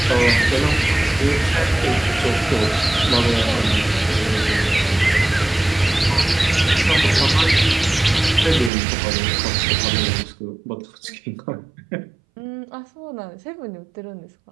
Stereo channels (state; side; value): drops out; left; at 8.7 s